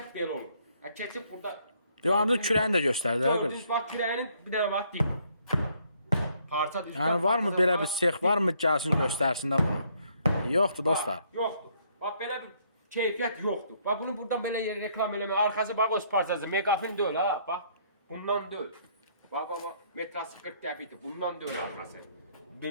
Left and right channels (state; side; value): inverted; both; correlation -0.67